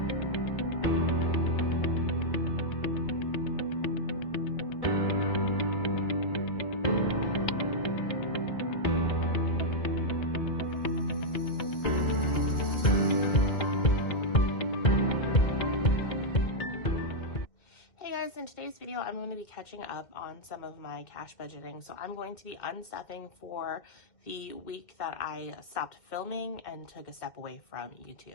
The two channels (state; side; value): late; right; 2.1 ms